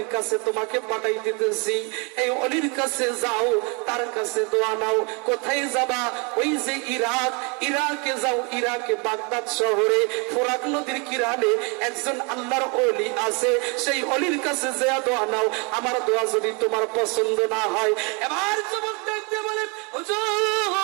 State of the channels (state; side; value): quieter; left; 32.3 dB